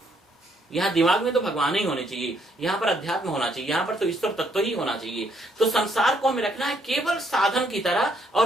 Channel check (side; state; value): both; normal; correlation 0.70